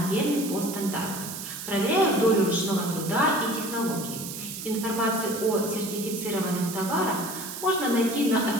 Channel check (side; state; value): right; noise; hiss, 8 dB below the sound